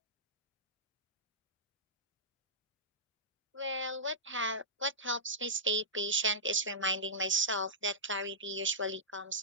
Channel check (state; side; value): normal; both; correlation -0.16